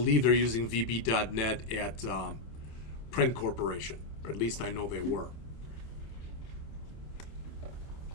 they're using VB.NET at Print Corporation, or at least I know they were.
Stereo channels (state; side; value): late; right; 27 ms